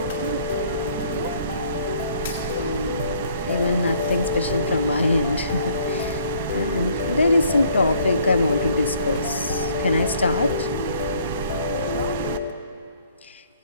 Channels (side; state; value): both; inverted; correlation -0.61